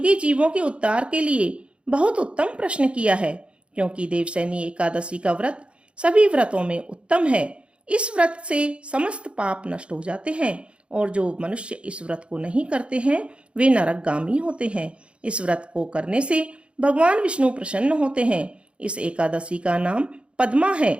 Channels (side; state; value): left; late; 0.058 ms